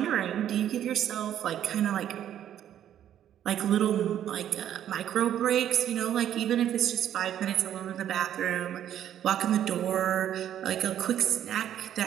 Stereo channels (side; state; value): left; quieter; 10.7 dB